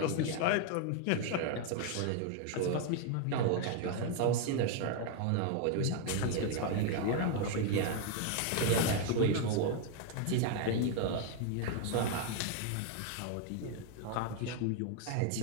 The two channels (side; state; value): both; different; correlation 0.01